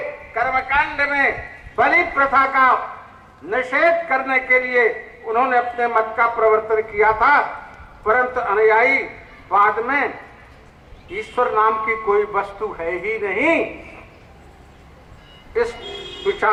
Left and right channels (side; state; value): both; identical; correlation 1.00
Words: कर्मकांड में बलि प्रथा का निषेध करने के लिए उन्होंने अपने मत का प्रवर्तन किया था, परंतु अनुयायी बाद में ईश्वर नाम की कोई वस्तु है ही नहीं इस